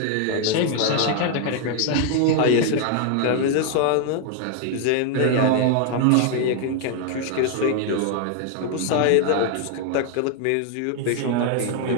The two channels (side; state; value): both; different; correlation 0.00